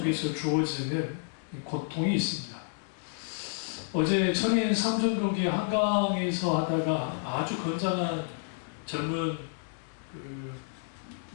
주어지는 고통이 있습니다. 어제 청인 삼성경기 한강에서 하다가 아주 건장한 젊은 그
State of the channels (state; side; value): silent; right; digital silence